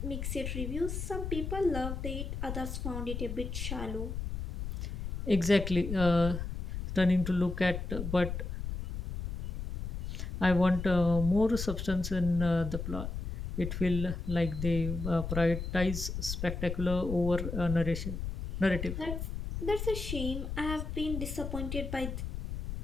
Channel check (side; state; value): left; noise; rumble, 5 dB below the sound